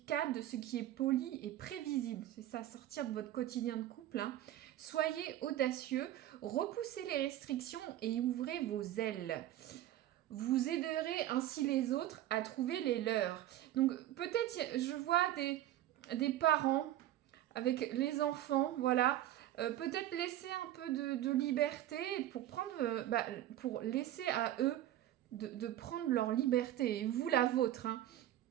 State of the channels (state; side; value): quieter; left; 13.3 dB